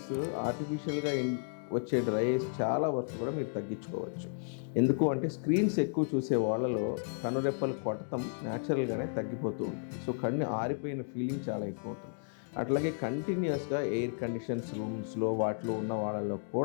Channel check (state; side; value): silent; right; digital silence